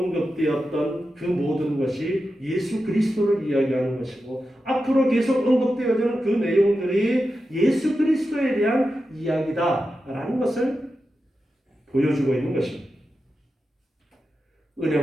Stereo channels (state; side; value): normal; both; correlation 0.90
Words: 그 모든 것이 예수 그리스도를 이야기하는 것이고 앞으로 계속 언급되어지는 그 내용들이 예수 그리스도에 대한 이야기다라는 것을 보여주고 있는 것입니다.